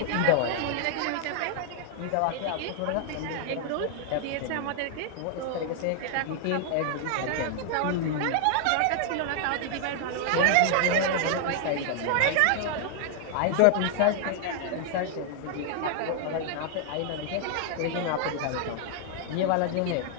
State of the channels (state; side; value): different; both; correlation 0.00